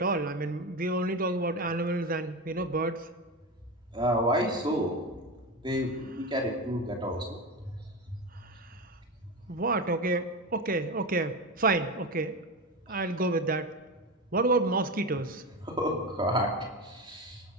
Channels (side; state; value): both; normal; correlation 0.20